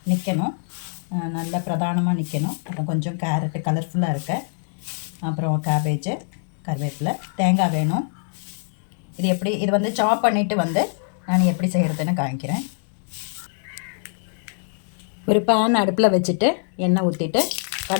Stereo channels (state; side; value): silent; right; digital silence